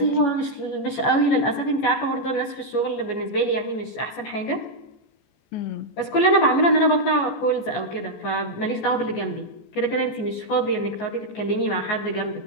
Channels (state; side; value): late; right; 14 ms